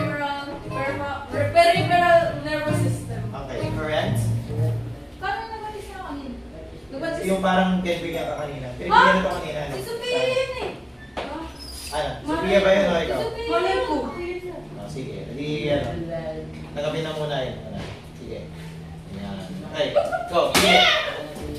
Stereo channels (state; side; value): identical; both; correlation 1.00